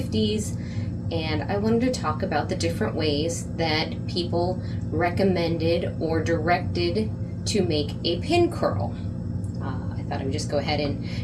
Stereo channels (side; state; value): both; identical; correlation 1.00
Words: and I wanted to talk about the different ways that people recommended or directed to make a pin curl. I thought I would just go ahead and